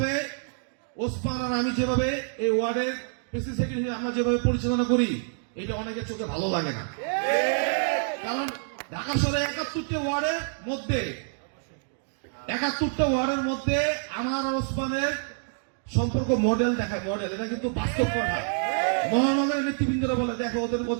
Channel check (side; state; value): left; silent; digital silence